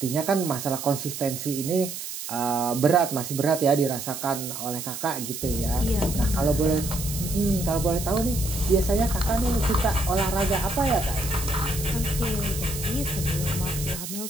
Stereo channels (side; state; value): right; noise; hiss, 8 dB below the sound